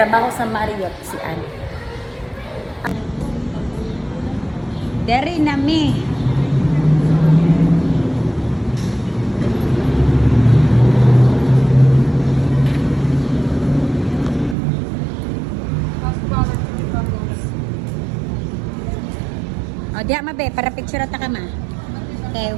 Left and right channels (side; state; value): left; drops out; at 14.6 s